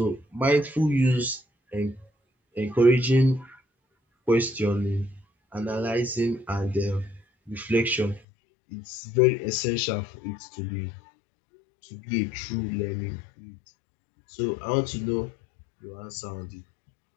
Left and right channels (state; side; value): drops out; right; at 8.2 s